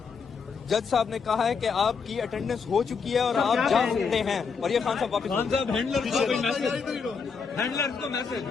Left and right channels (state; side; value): quieter; right; 5.6 dB